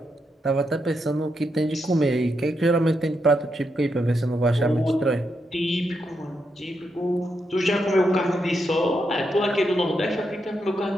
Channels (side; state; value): both; normal; correlation 0.82